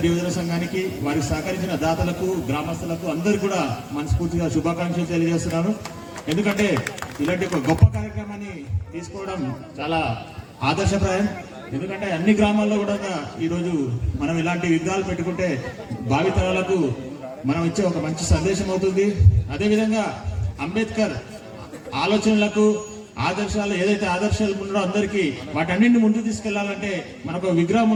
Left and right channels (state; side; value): identical; both; correlation 1.00